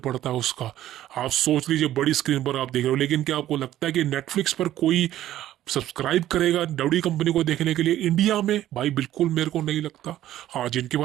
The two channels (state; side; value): quieter; left; 13.1 dB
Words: है उसका। आप सोच लीजिए बड़ी स्क्रीन पर आप देख रहे हो, लेकिन क्या आपको लगता है कि नेटफ्लिक्स पर कोई सब्सक्राइब करेगा डब्ल्यू कंपनी को देखने के लिए इंडिया में? भाई बिल्कुल मेरे को नहीं लगता। हाँ, जिनके